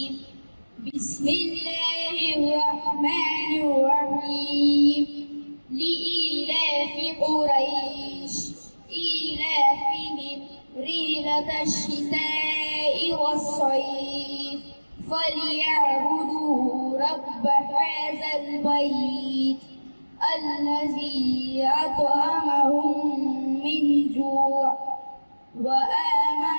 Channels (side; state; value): both; inverted; correlation -1.00